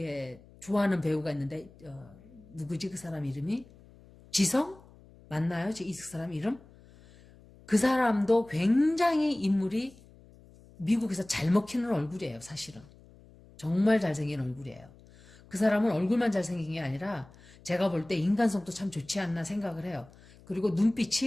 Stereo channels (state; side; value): noise; left; hum, 24 dB below the sound